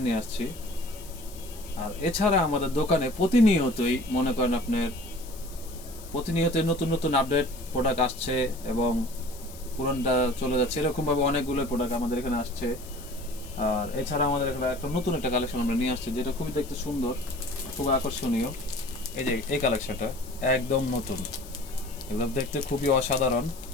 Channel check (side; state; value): left; noise; hiss, 18 dB below the sound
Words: নিয়ে আসছি। আর এছাড়া আমাদের দোকানে প্রতিনিয়তই মনে করেন আপনার প্রতিনিয়তই নতুন নতুন আপডেট প্রোডাক্ট আসছে এবং পুরনটা চলে যাচ্ছে, এরকমভাবে অনেকগুলো প্রোডাক্ট আমাদের এখানে আসছে। আর এছাড়া আমাদের এখানে একটা নতুন একটা কালেকশন আমরা নিয়ে আসছি, যেটা খুবই দেখতে সুন্দর, খুব আকর্ষণীয়। এই যে এই কালেকশনটা একদম নতুন, একদম দেখতে খুবই অসাধারণ